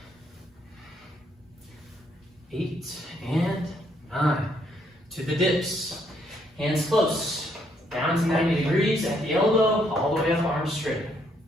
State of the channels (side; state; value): both; normal; correlation 0.71